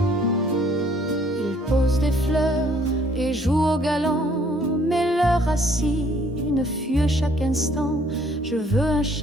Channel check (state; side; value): normal; both; correlation 0.62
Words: Il pose des fleurs et joue au galant, mais leurs racines fuient chaque instant. Je veux un